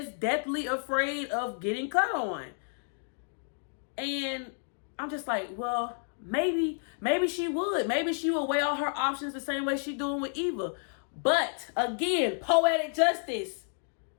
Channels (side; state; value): right; silent; digital silence